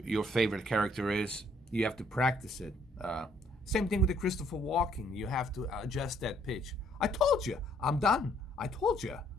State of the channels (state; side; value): normal; both; correlation 0.66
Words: your favorite character is. You have to practice it. Same thing with the Christopher Walking. You have to adjust that pitch. I told you, I'm done. I told you.